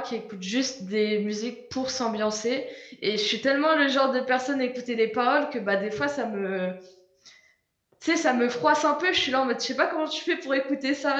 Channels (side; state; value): both; identical; correlation 1.00